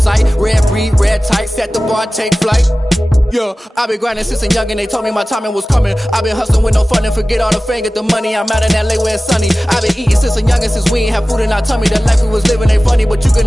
Red breed, red tight, set the bar, take flight. Yeah, I been grinding since a young and they told me my timing was coming. I been hustling with no fun and forget all the fame, get the money. I'm out in LA where it's sunny. I been eating since a young and since we ain't have food in our tummy. The life we was living ain't funny, but you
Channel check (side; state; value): both; normal; correlation 0.97